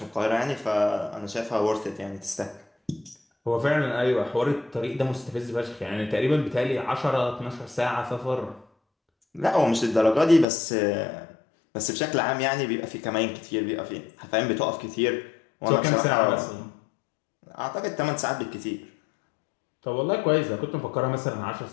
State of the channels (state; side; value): drops out; right; at 10.5 s